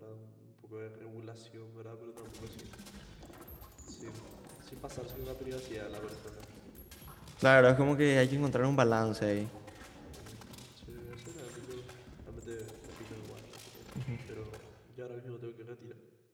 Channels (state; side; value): identical; both; correlation 1.00